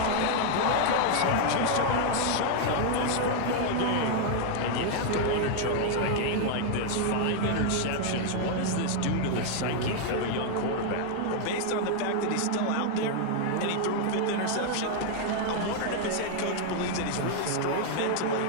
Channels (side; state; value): both; different; correlation 0.00